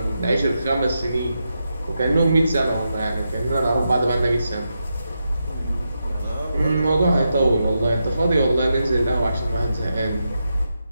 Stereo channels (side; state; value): both; inverted; correlation -0.86